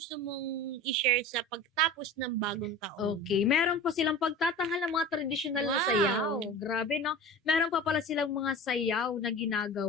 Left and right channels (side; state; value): both; normal; correlation 0.35